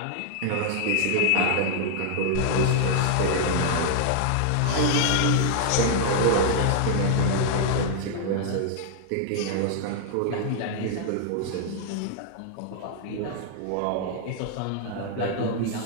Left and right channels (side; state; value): both; different; correlation -0.01